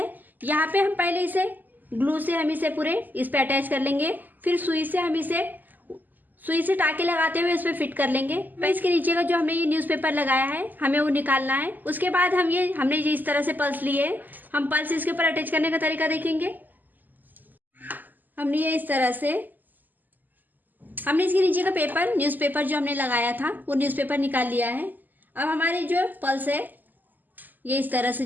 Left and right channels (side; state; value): left; late; 0.086 ms